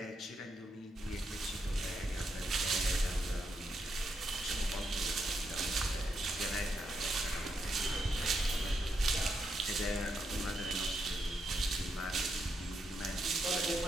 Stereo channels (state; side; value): normal; both; correlation 0.81